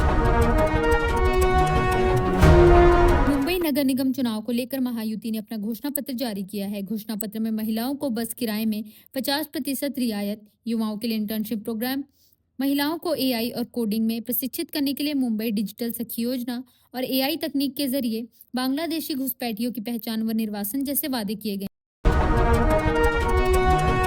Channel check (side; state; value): both; identical; correlation 1.00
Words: मुंबई नगर निगम चुनाव को लेकर महायुति ने अपना घोषणा पत्र जारी किया है। घोषणा पत्र में महिलाओं को बस किराए में 50% रियायत, युवाओं के लिए इंटर्नशिप प्रोग्राम, महिलाओं को एआई और कोडिंग में प्रशिक्षित करने के लिए मुंबई डिजिटल सखी योजना और एआई तकनीक के जरिए बांग्लादेशी घुसपैठियों की पहचान व निर्वासन जैसे वादे किए गए।